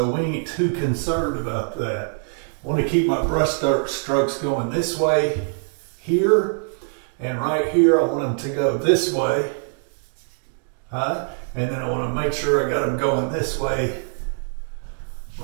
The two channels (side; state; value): left; silent; digital silence